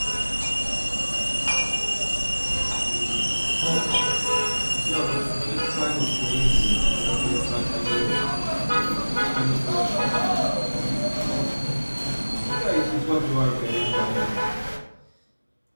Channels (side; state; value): both; inverted; correlation -1.00